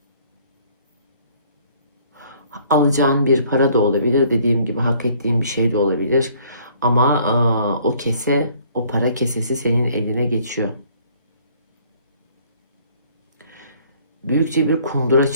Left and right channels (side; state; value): both; inverted; correlation -0.60